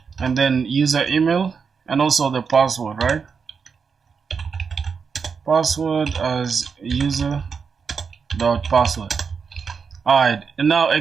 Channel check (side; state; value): left; quieter; 5.8 dB